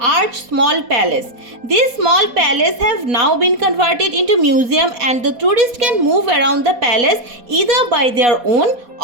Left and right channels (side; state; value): left; late; 4.2 ms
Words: small palace. These small palace have now been converted into museum and the tourist can move around the palace either by their own